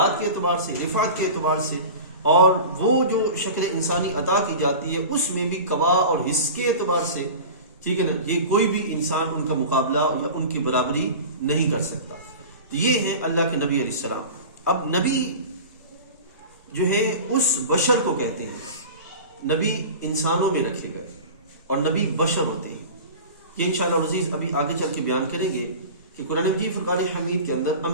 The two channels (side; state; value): both; inverted; correlation -0.34